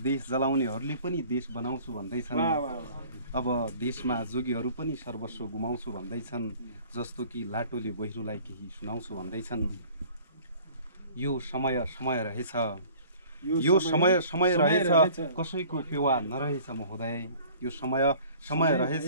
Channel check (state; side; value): inverted; both; correlation -0.50